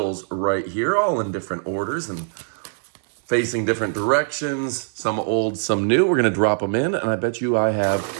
right here, all in different orders and facing different directions, some old, some new. We're gonna drop them in, and I bet you I have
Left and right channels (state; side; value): silent; left; digital silence